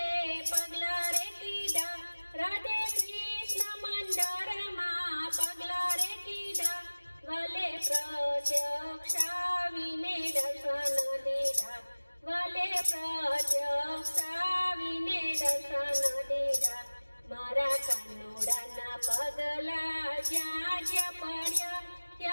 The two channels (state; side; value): inverted; both; correlation -1.00